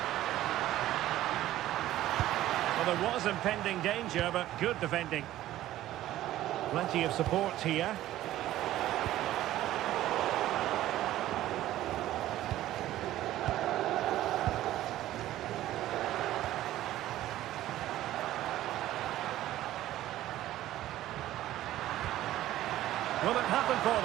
Well, there was impending danger, but good defending. Plenty of support here. Will it happen for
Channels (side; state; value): left; quieter; 14.2 dB